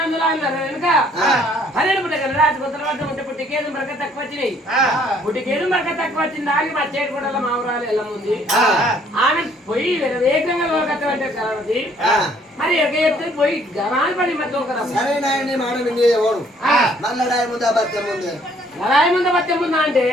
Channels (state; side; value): normal; both; correlation 0.62